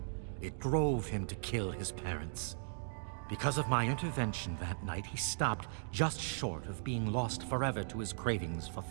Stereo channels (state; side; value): silent; left; digital silence